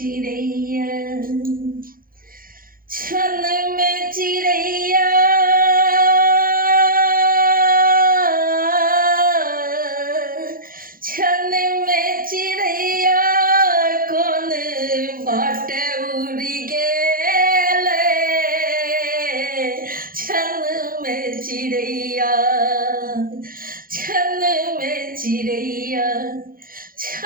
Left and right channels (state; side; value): late; left; 0.42 ms